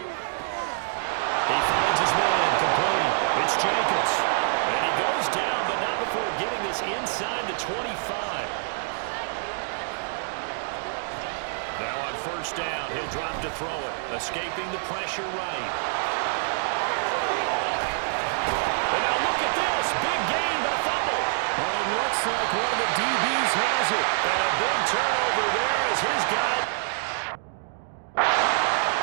He finds his man complete. It's Jacobs. And he goes down, but not before getting this inside the 25. Now on 1st down, he'll drop to throw it. Escaping the pressure right. And now look at this. Big gain, but a fumble. Well, it looks like one of the DBs has it. And a big turnover there as his guy.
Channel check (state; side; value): silent; left; digital silence